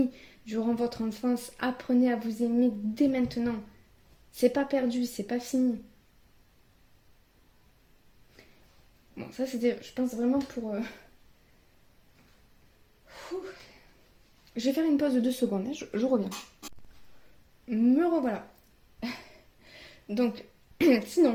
durant votre enfance. Apprenez à vous aimer dès maintenant. C'est pas perdu, c'est pas fini. Bon, ça c'était, je pense vraiment pour... Je vais faire une pause de 2 secondes, hein, je reviens. Me revoilà. Donc,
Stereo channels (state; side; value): identical; both; correlation 1.00